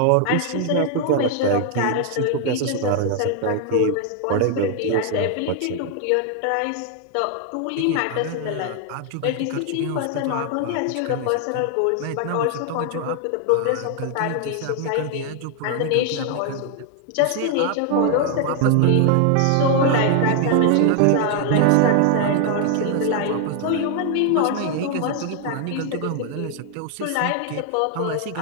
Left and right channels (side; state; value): both; different; correlation 0.00